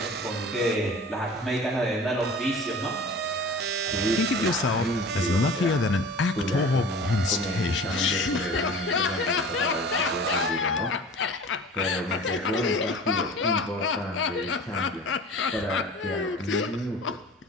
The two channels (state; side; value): normal; both; correlation 0.40